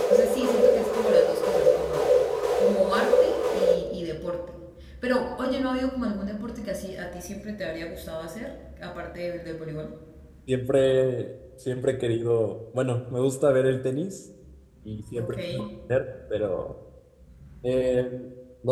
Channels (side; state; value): both; identical; correlation 1.00